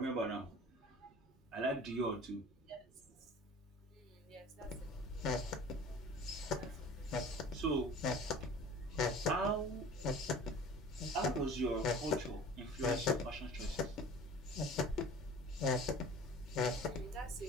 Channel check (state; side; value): normal; both; correlation 0.43